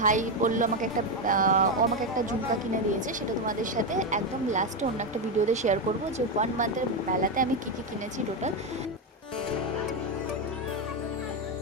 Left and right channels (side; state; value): both; normal; correlation 0.08